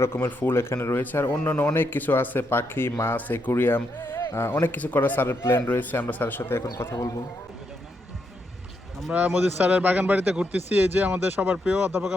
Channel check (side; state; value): both; normal; correlation 0.80